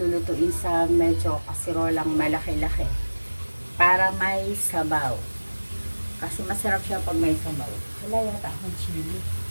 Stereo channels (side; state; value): both; inverted; correlation -1.00